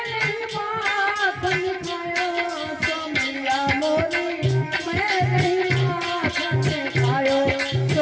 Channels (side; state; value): both; identical; correlation 1.00